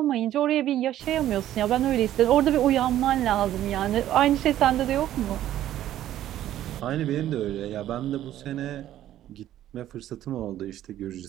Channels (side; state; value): left; quieter; 12.6 dB